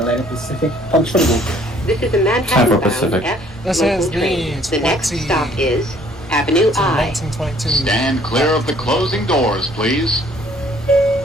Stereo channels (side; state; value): both; normal; correlation 0.59